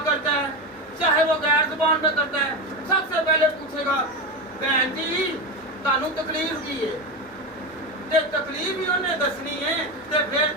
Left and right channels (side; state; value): both; normal; correlation 0.18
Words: کرتا ہے، چاہے وہ غیر زبان میں کرتا ہے، سب سے پہلے پوچھے گا بہن جی تانوں تکلیف کی ہے، تے تکلیف ہی انہیں دسنی ہے، تے پھر